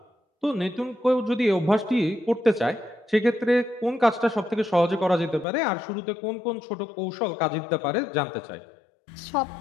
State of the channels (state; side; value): drops out; right; at 5.5 s